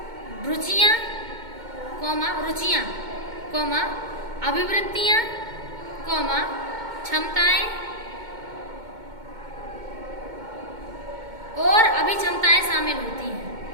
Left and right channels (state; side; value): late; left; 2.2 ms